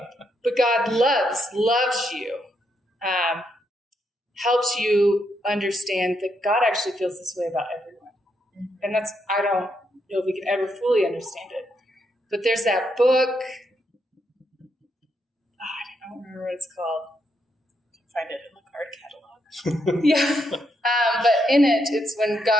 But God loves you, helps you understand that God actually feels this way about everyone. And I don't know if we can ever fully understand it. But there's that book, I don't remember what it's called. You can find it in the card catalog. Yeah. But in it, it's when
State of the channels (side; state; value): both; normal; correlation 0.79